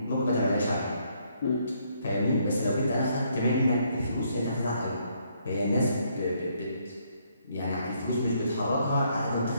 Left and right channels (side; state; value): both; inverted; correlation -0.71